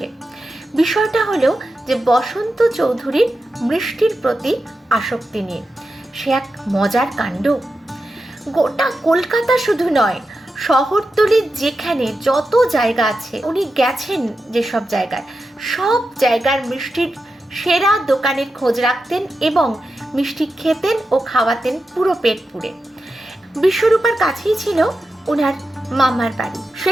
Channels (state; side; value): normal; both; correlation 0.90